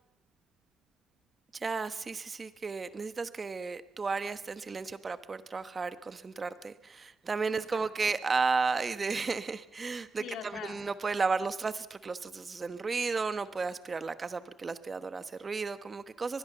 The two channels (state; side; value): quieter; left; 4.1 dB